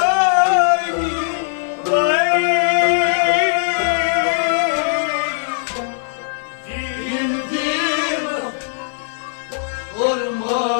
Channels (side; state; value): right; silent; digital silence